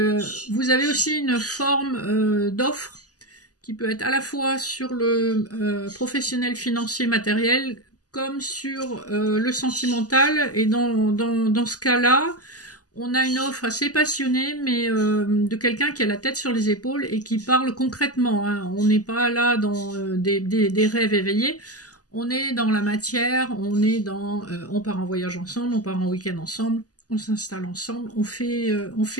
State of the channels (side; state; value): right; late; 0.67 ms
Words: avez aussi une forme d'offre qui peut être à la fois sur le professionnel, financier, matériel, comme sur le sentimental. Et dans ce cas-là, on a une offre assez passionnée, mais de quelqu'un qui a la tête sur les épaules et qui parle concrètement. On n'est pas là dans des rêves éveillés. On est dans la matière, on part en voyage ensemble, on part en week-end ensemble, on s'installe ensemble, on